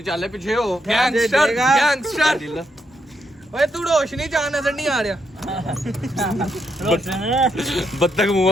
ਚੱਲੇ ਪਿੱਛੇ ਹੋ ਗੈਂਗਸਟਰ ਓਏ ਤੂੰ ਰੋਸ਼ਨੀ ਚਾਹ ਨਜ਼ਰ ਨਹੀਂ ਆ ਰਿਹਾ ਬੱਤਖ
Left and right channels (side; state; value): both; normal; correlation 0.79